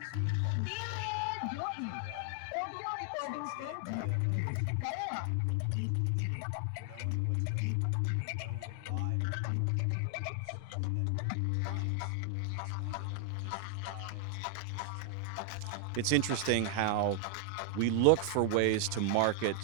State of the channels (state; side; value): different; both; correlation 0.00